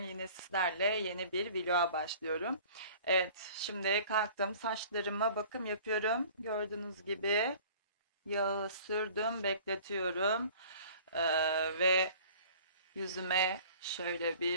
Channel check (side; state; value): both; inverted; correlation -0.48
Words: yine sizlerle yeni bir vloga başlıyorum. Evet, şimdi kalktım, saçlarıma bakım yapıyorum. Gördüğünüz gibi yağı sürdüm, bekletiyorum. Ve yüzüme şöyle